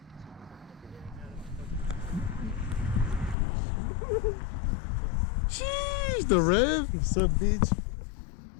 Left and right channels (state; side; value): drops out; right; at 3.4 s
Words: Sheesh, the rev. What's up, bitch?